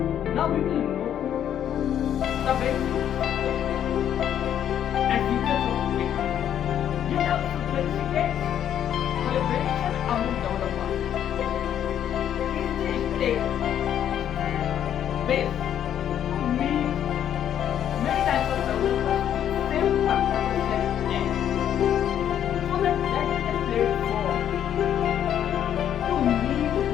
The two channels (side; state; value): right; quieter; 10.0 dB